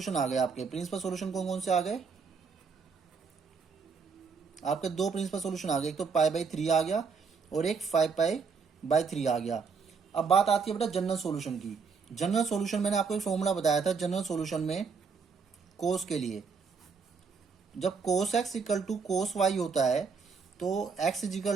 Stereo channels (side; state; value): left; quieter; 5.4 dB